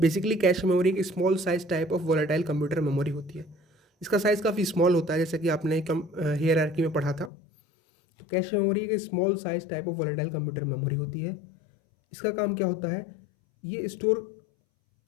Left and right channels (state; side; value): drops out; right; at 7.3 s